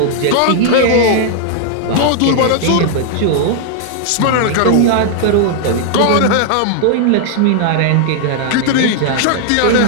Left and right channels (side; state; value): both; different; correlation -0.01